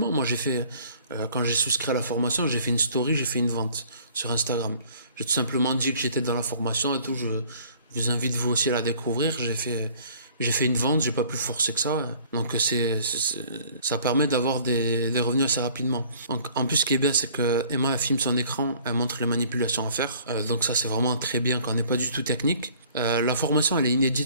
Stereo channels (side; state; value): both; inverted; correlation -0.54